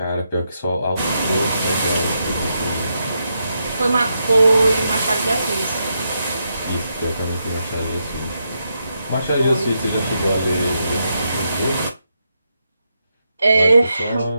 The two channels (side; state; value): both; inverted; correlation -0.83